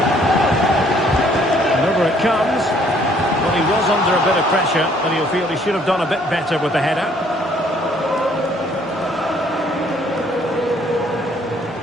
And over it comes. Well, he was under a bit of pressure, and he'll feel he should have done a bit better with the header.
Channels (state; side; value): normal; both; correlation 0.63